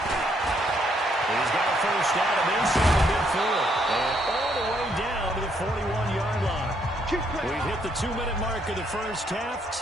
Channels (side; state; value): both; normal; correlation 0.71